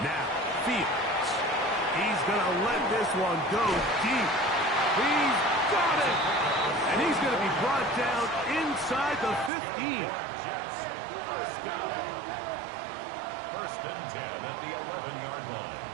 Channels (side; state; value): left; drops out; at 9.5 s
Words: Now, Fields. He's going to let this one go deep. He's got it! And he's going to be brought down inside the 15. First and 10 at the 11-yard line.